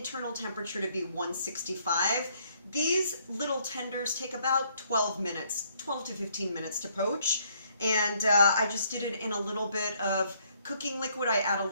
temperature to be 165. These little tenders take about 12 minutes, 12 to 15 minutes to poach. And I just did it in a little bit of cooking liquid. I add a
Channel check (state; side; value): inverted; both; correlation -0.68